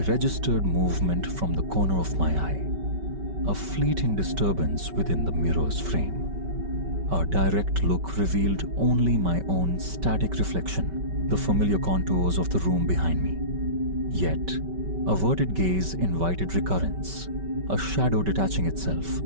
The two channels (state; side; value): late; left; 5.2 ms